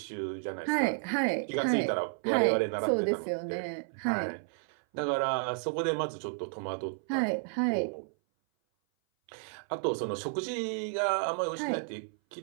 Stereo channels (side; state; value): left; silent; 57 dB below the other